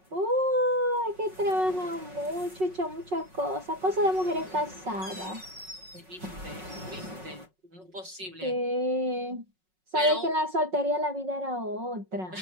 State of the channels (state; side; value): late; left; 5.4 ms